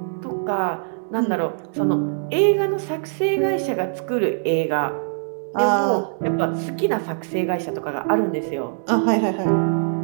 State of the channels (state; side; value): silent; left; digital silence